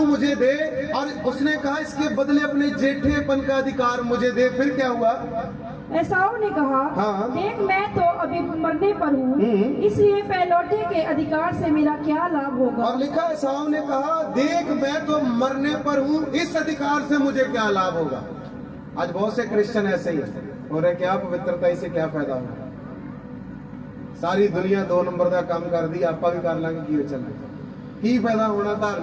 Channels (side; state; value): both; identical; correlation 1.00